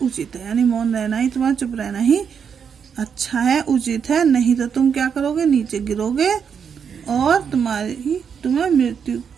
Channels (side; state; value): left; quieter; 7.0 dB